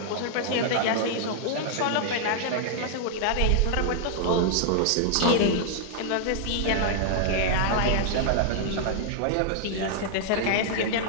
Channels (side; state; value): both; different; correlation -0.01